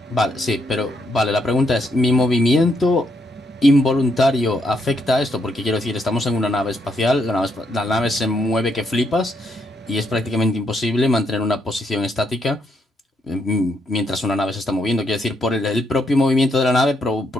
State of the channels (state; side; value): normal; both; correlation 0.76